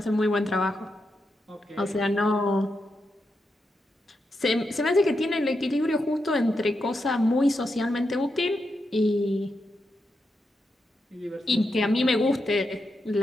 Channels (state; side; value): normal; both; correlation 0.85